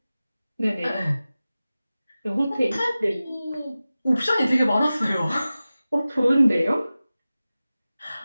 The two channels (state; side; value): inverted; both; correlation -0.96